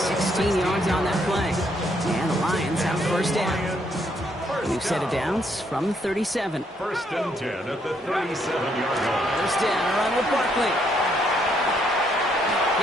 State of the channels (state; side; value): normal; both; correlation 0.72